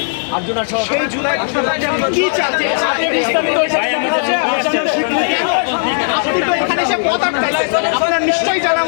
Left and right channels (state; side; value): silent; right; digital silence